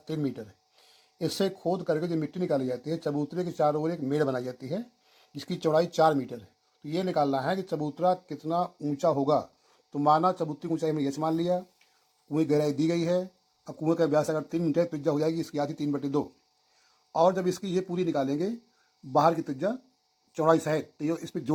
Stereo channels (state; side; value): identical; both; correlation 1.00